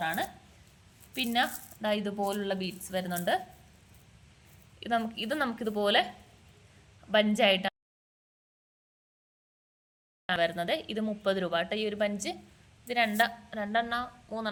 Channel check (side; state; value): both; identical; correlation 1.00